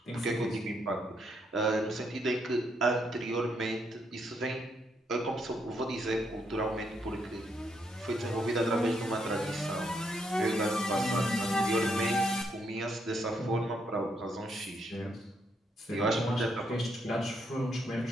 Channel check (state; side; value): normal; both; correlation 0.76